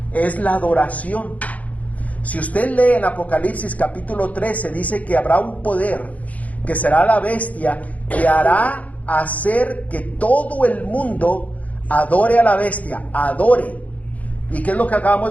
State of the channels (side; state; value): right; late; 0.071 ms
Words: es la adoración. Si usted lee en Apocalipsis capítulo 13, dice que habrá un poder, que será la bestia, que hará hacer que todo el mundo adore a la bestia, adore. ¿Y qué es lo que